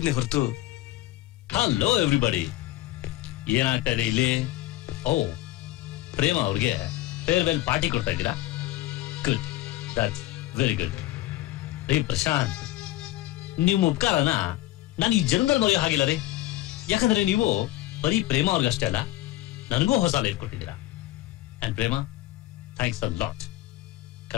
ಹೊರತು. ಹಲೋ ಎವ್ರಿಬಡಿ, ಏನಾಗ್ತಾ ಇದೆ ಇಲ್ಲಿ? ಓ, ಪ್ರೇಮ ಅವ್ರಿಗೆ ಫೇರ್ವೆಲ್ ಪಾರ್ಟಿ ಕೊಡ್ತಾ ಇದ್ದೀರಾ? Good, that's very good. ರೀ ಪ್ರಶಾಂತ್, ನಿಮ್ಮ ಉಪಕಾರನ ನಾನು ಈ ಜನ್ಮದಲ್ಲಿ ಮರೆಯೋ ಹಾಗಿಲ್ಲ ರೀ. ಯಾಕಂದ್ರೆ ನೀವು ಬರೀ ಪ್ರೇಮ ಅವ್ರಿಗಷ್ಟೇ ಅಲ್ಲ, ನನಗೂ ಹೊಸ ಲೈಫ್ ಕೊಟ್ಟಿದ್ದೀರಾ. And Prema, thanks a lot.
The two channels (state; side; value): quieter; right; 16.4 dB